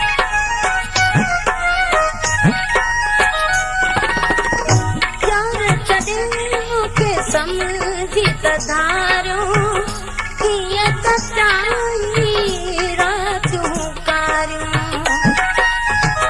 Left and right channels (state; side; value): identical; both; correlation 1.00